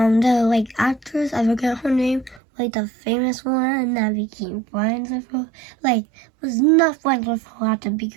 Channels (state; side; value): drops out; left; at 2.4 s